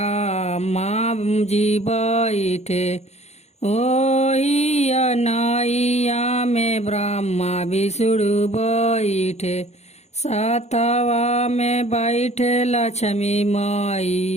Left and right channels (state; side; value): late; right; 0.32 ms